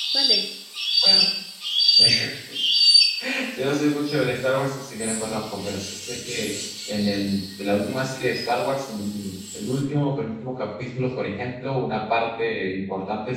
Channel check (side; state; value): both; identical; correlation 1.00